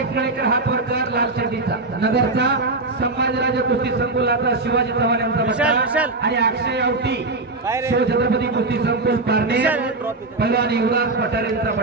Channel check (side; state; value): left; quieter; 3.3 dB